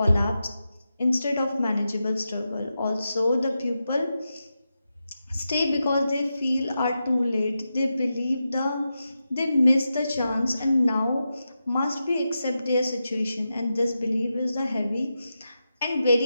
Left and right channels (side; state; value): both; inverted; correlation -0.89